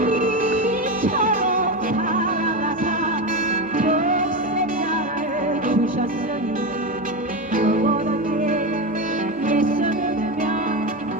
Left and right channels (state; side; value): noise; left; hum, 27 dB below the sound